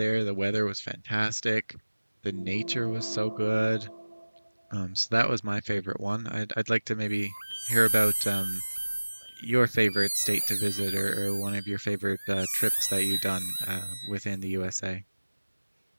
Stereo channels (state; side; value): inverted; both; correlation -1.00